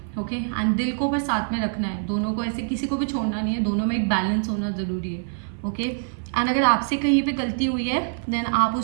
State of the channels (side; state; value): left; silent; 56 dB below the other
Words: ओके, एंड दिल को पर साथ में रखना है, दोनों को ऐसे किसी को भी छोड़ना नहीं है, दोनों में एक बैलेंस होना ज़रूरी है। ओके, एंड अगर आपसे कहीं पे गलती हुई है देन आप